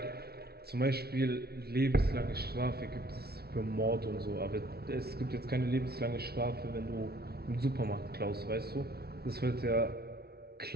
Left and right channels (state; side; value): late; left; 0.45 ms